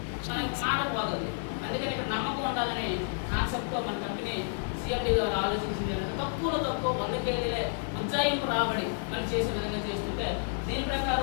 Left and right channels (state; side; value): silent; right; digital silence